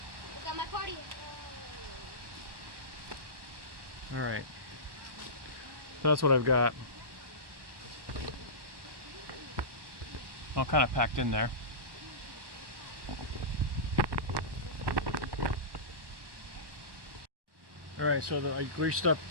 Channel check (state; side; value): late; left; 1.1 ms